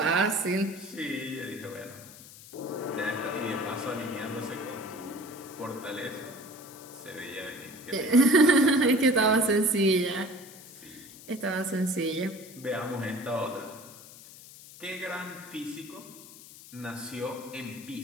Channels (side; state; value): left; noise; hiss, 18 dB below the sound